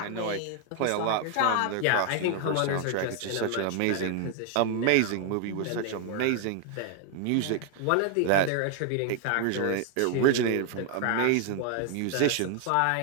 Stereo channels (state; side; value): different; both; correlation 0.00